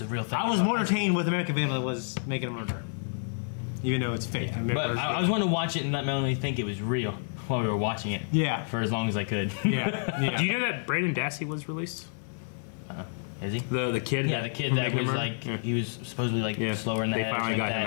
a real thing. I was more entertained with American Vandal than was Making a Murder. Even though it's fake. But I was wanting to watch it and let Melanie think it was real while we were watching it. Yeah. For as long as I could. Yeah. Do you know that Brandon Dassey was released? Is he? The kid? Yeah, the kid that was Remember? like, Yeah. he was supposedly like Yeah. slower in the They head or finally something like got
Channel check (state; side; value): silent; right; digital silence